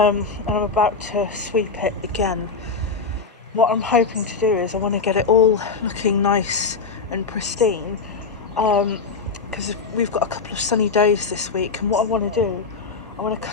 I'm about to sweep it again. What I'm hoping to do is I want to get it all looking nice and pristine, because we've got a couple of sunny days this week, and what I want to do, I want to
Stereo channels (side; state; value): right; quieter; 4.6 dB